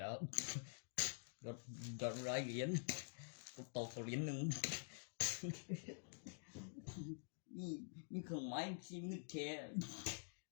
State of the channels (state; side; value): silent; right; digital silence